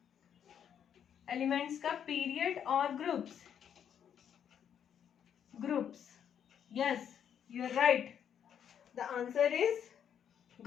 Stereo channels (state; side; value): quieter; right; 8.7 dB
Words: एलिमेंट्स का, पीरियड और groups. Yes, you are right, the answer is